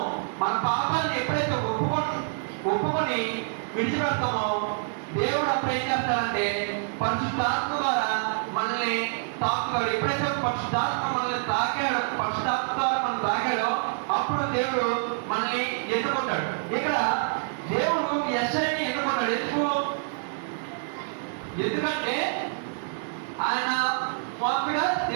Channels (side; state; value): left; silent; digital silence